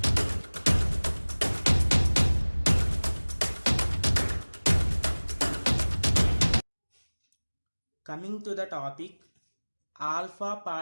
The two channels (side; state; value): both; inverted; correlation -1.00